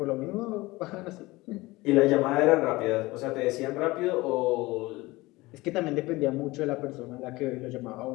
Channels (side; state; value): right; quieter; 20.7 dB